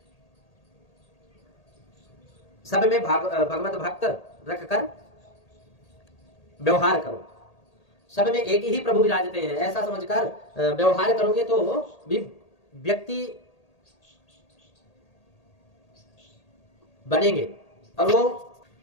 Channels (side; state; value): right; late; 1.8 ms